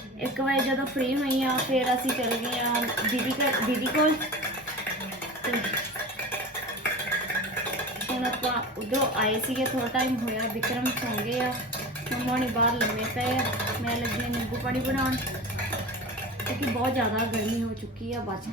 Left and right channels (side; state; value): both; normal; correlation 0.32